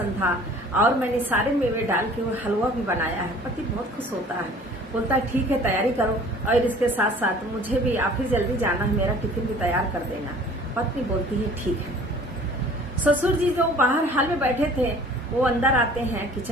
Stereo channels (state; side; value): normal; both; correlation 0.49